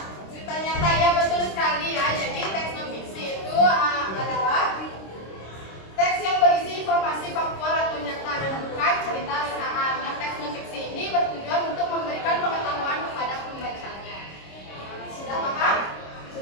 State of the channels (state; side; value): late; right; 26 ms